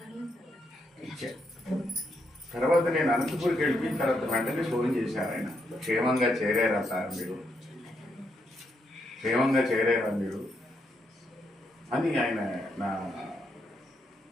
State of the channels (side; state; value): both; normal; correlation 0.78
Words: తర్వాత నేను అనంతపూర్కి వెళ్ళిపోయిన తర్వాత వెంటనే ఫోన్ చేశారు ఆయన. క్షేమంగా చేరారా సార్ మీరు, క్షేమంగా చేరారా మీరు అని ఆయన